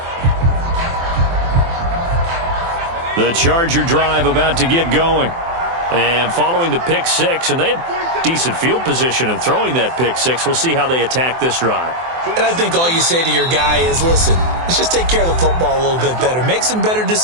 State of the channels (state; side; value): late; left; 24 ms